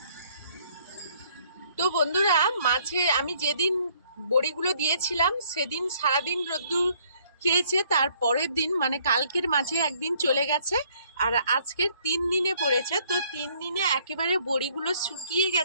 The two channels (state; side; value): inverted; both; correlation -0.63